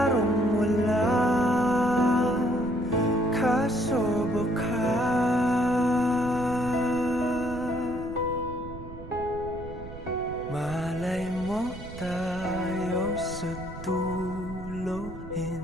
wala, kaso baka malay mo tayo sa dulo.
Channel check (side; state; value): right; noise; rumble, 12 dB below the sound